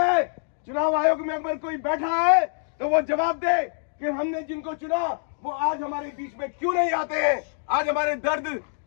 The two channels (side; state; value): right; silent; digital silence